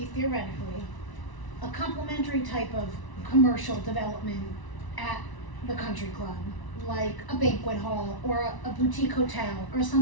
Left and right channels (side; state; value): right; late; 1.0 ms